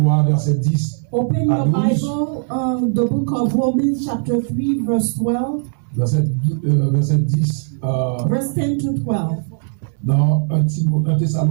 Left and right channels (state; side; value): silent; left; digital silence